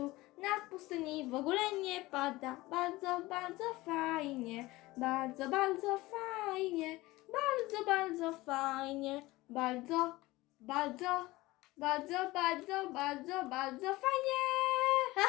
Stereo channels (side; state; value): right; quieter; 19.5 dB